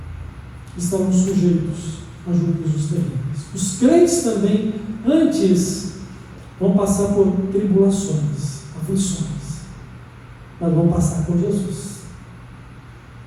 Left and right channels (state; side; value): identical; both; correlation 1.00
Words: estarão sujeitos a juízos terríveis. Os crentes também, antes, vão passar por tribulações, aflições, mas vão passar por Jesus.